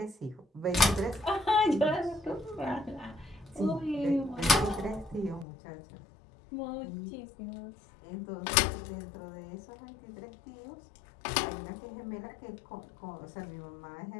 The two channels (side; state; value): right; drops out; at 5.5 s